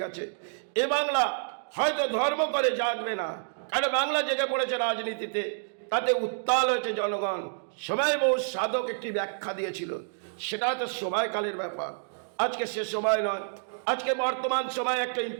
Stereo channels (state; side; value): silent; left; digital silence